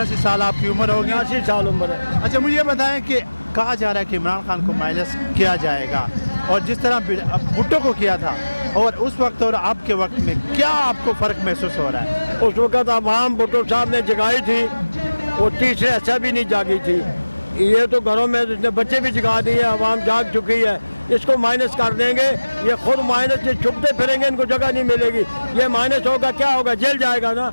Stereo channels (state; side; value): inverted; both; correlation -1.00